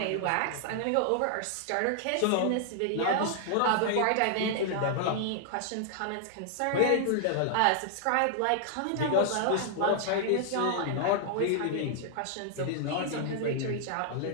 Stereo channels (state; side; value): different; both; correlation -0.01